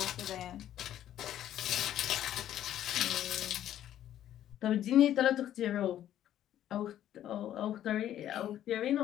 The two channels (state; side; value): quieter; right; 11.6 dB